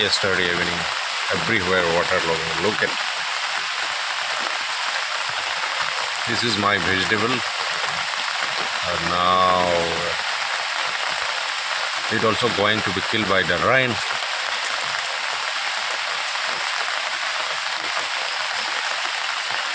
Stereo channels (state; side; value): identical; both; correlation 1.00